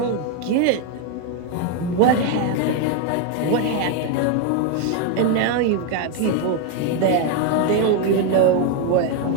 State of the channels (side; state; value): both; different; correlation 0.01